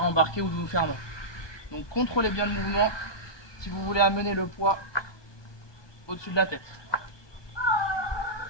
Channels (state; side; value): late; right; 1.2 ms